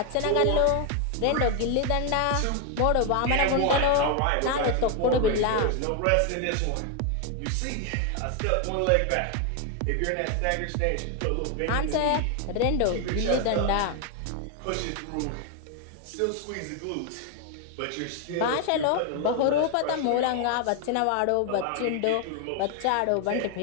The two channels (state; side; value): different; both; correlation 0.01